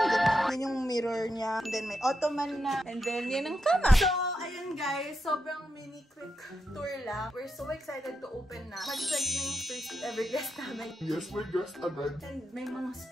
Yan yung mirror niya. And then, may ottoman na. And then, yan ang kama. So, ayan guys. Sobrang mini quick tour lang. We're so excited to open na. Mag-check na yung first ever guest namin. Yes, my guest agad. And may mga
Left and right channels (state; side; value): normal; both; correlation 0.85